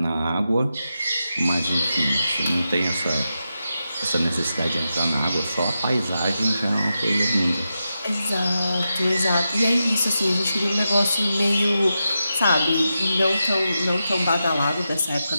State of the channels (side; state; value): both; inverted; correlation -0.89